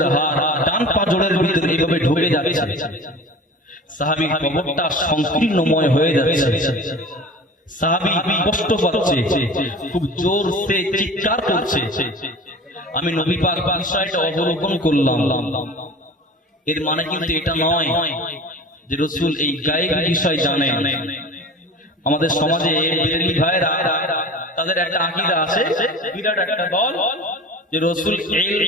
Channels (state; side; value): normal; both; correlation 0.38